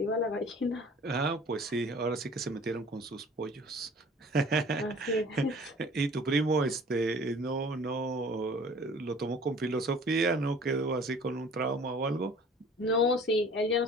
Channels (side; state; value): both; normal; correlation 0.48